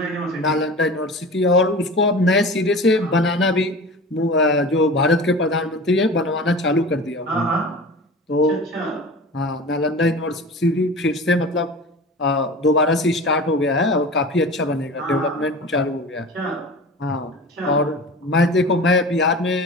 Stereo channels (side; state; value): both; normal; correlation 0.35